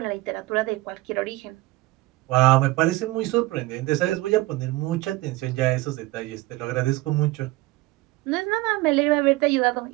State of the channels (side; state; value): left; quieter; 19.9 dB